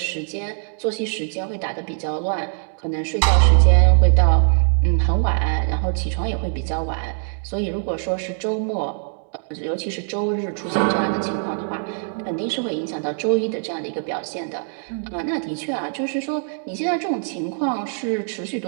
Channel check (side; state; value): left; silent; 64 dB below the other